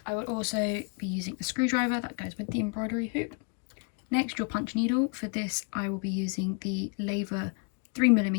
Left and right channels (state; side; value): quieter; right; 36.9 dB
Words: I would also be using a screwdriver that goes with the embroidery hoop. Next, your punch needle. For this I will be using the Lavor